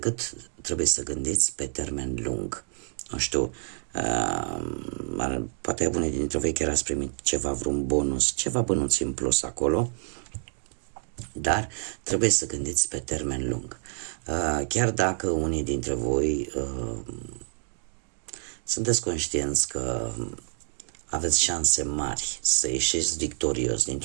trebuie să gândiți pe termen lung. Nu știu, poate unii dintre voi chiar ați primit ceva, vreun bonus, ceva bănuți în plus acolo, dar trebuie să gândiți pe termen lung. Chiar dacă unii dintre voi sunteți conștienți că aveți șanse mari să ieșiți victorios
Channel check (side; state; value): left; silent; 55 dB below the other